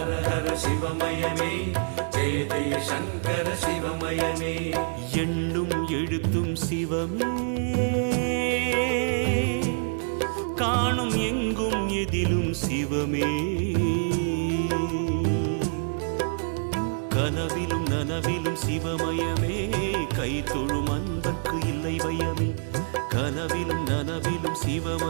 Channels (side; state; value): left; silent; digital silence